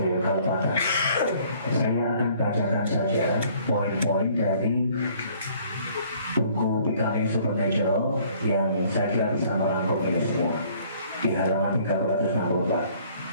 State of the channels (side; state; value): both; inverted; correlation -0.58